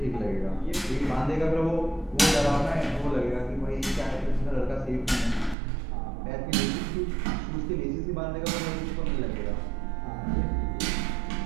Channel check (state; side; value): drops out; left; at 5.6 s